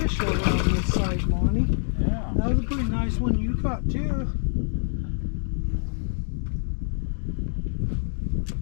over on this side, Monty. Yeah. That was a pretty nice one you caught too.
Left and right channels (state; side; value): silent; right; digital silence